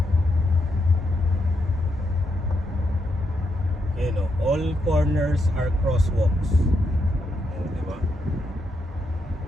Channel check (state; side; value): normal; both; correlation 0.81